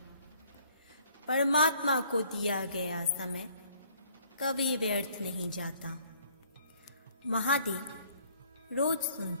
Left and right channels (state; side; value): inverted; both; correlation -0.59